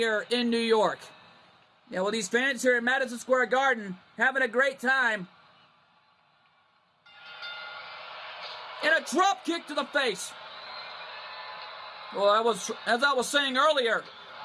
in New York. Yeah, well, these fans here at Madison Square Garden having a great time. And a drop kick to the face. Well, as I was saying earlier,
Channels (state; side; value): identical; both; correlation 1.00